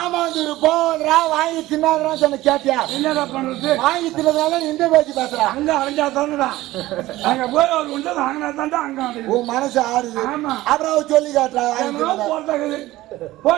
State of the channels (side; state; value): left; quieter; 17.0 dB